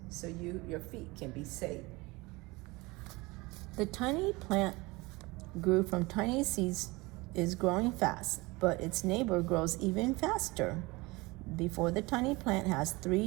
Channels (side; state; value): left; quieter; 23.2 dB